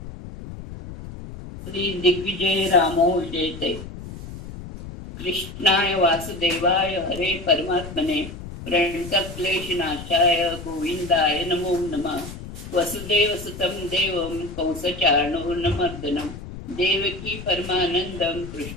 श्री दिग्विजय रामो जयते. कृष्णाय वासुदेवाय हरे परमात्मने प्रणतक्लेशनाशाय गोविंदाय नमो नमः. वसुदेवसुतं देवं कंसचाणूरमर्दनं देवकी परमानंदं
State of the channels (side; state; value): left; noise; rumble, 12 dB below the sound